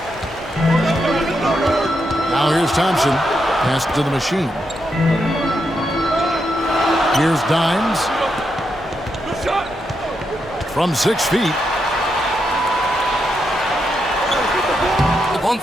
Now here's Thompson. Pass to the machine. Here's Dimes. From 6 feet. The pump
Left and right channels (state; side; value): normal; both; correlation 0.83